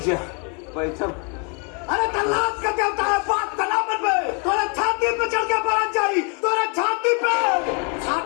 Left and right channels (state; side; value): quieter; right; 36.2 dB